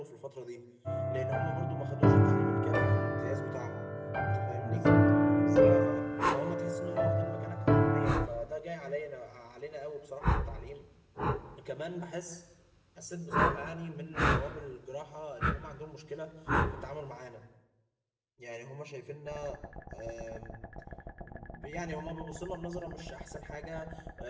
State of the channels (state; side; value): identical; both; correlation 1.00